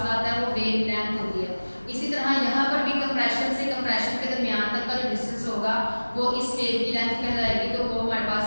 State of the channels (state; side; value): inverted; both; correlation -1.00